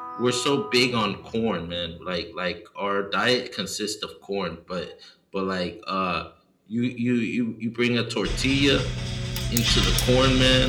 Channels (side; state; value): both; identical; correlation 1.00